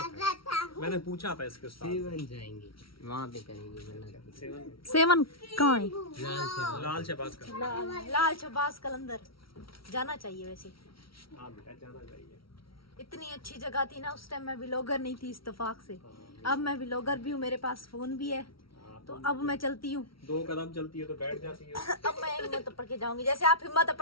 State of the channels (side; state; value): right; late; 0.75 ms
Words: है। मैंने पूछा था इसके साथ। सेवन जाएंगे वहाँ पे करेंगे मन्नत। सेवन कहाँ है? लाल शहबाज का। लाल शहबाज कलंदर जाना चाहिए वैसे। हाँ बेटा, जाना चाहिए। इतनी अच्छी जगह थी ना उस टाइम, मैं व्लॉगर नहीं थी इत्तेफाक से। अब मैं व्लॉगर भी हूँ, मेरे पास फोन भी है, तो अब मैं चलती हूँ। 2 कदम चलती है तो बैठ जाती है। अब मैं हिम्मत पड़ के जाऊंगी, जैसे आप हिम्मत